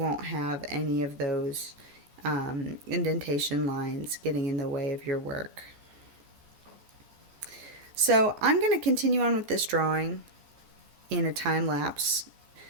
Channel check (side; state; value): left; late; 14 ms